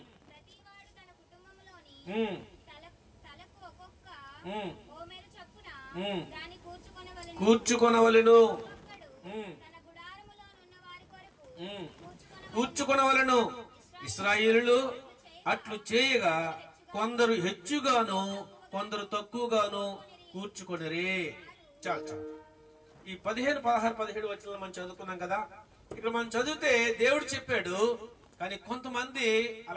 కూర్చుకొనవలెను. ఇశ్రాయేలులు అట్లు చేయగా కొందరు హెచ్చుగాను కొందరు తక్కువగాను కూర్చుకొనిరే. చాలు. ఈ 15, 16, 17 వచనాలు మనం చదువుకున్నాం కదా. ఇక్కడ మనం చదివితే దేవుడు చెప్పాడు, కానీ కొంతమంది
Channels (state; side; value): identical; both; correlation 1.00